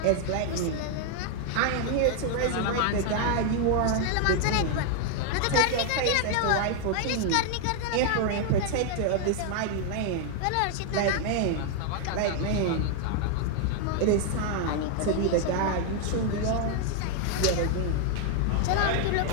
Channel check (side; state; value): both; different; correlation 0.00